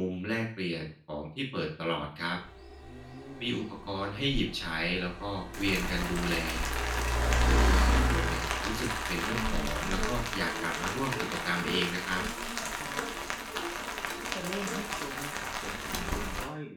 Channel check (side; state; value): both; identical; correlation 1.00